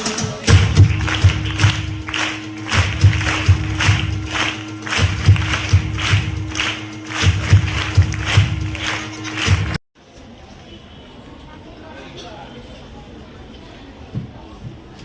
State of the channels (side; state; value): both; identical; correlation 1.00